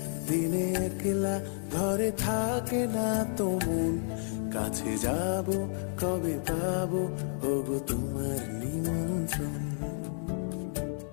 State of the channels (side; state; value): right; silent; 57 dB below the other